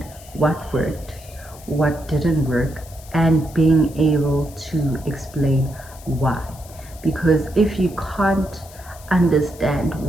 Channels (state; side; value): noise; left; hiss, 21 dB below the sound